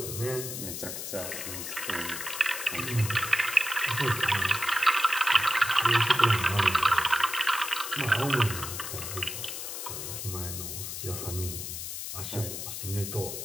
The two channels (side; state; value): left; noise; hiss, 6 dB below the sound